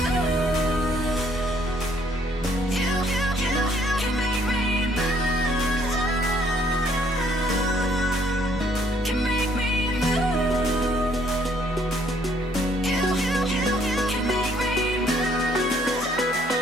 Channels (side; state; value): both; normal; correlation 0.65